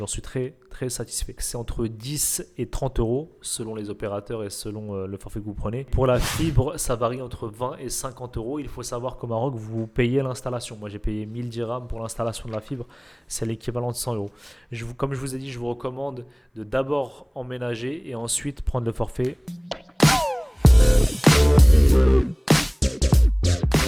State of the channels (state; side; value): identical; both; correlation 1.00